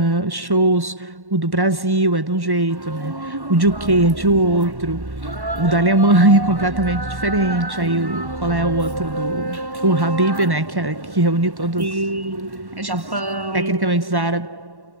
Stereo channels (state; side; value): late; left; 1.1 ms